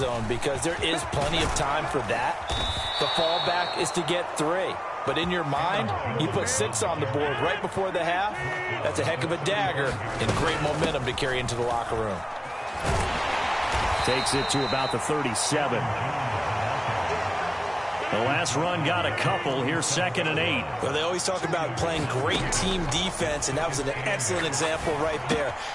because there is plenty of time for that. The fallback is to get 3. But in your mind, you put 6 on the board right before the half. That's a heck of a dagger and great momentum to carry into the locker room. Takes it to about the 37. The last run got a couple. Here's 2nd and 8. Well, they always talk about playing great team defense, and that was an excellent example right there.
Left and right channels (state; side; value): identical; both; correlation 1.00